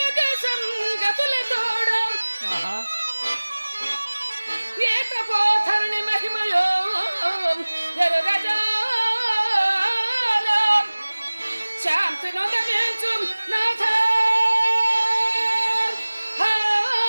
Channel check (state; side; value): inverted; both; correlation -1.00